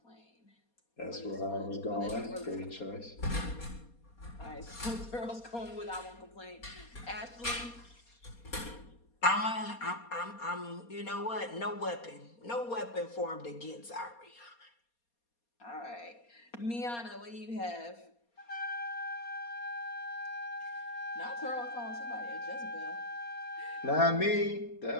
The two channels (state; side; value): late; right; 4.2 ms